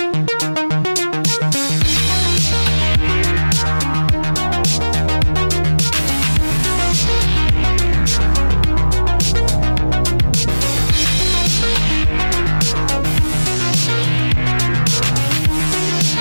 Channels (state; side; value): inverted; both; correlation -1.00